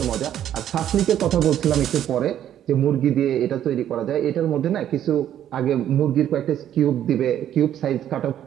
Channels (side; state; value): left; quieter; 10.8 dB